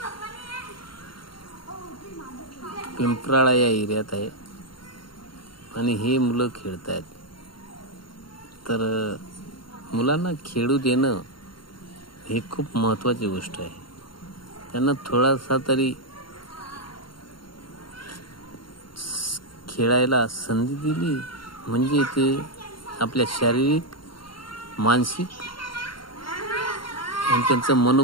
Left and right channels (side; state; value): right; late; 0.73 ms